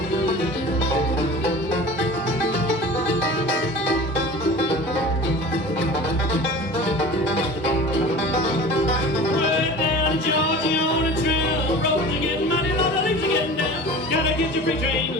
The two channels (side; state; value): both; normal; correlation 0.38